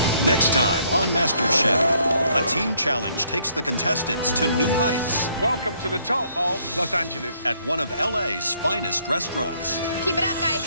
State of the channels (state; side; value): inverted; both; correlation -0.68